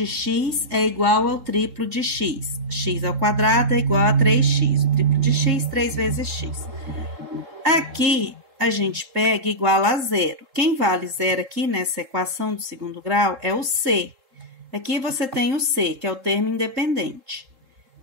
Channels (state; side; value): late; left; 3.7 ms